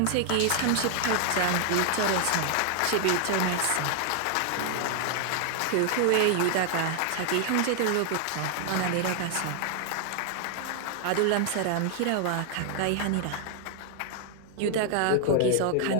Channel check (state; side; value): different; both; correlation 0.00